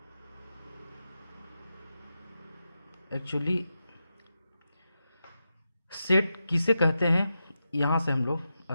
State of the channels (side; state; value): both; inverted; correlation -0.89